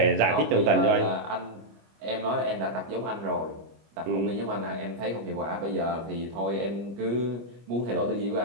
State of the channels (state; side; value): late; left; 25 ms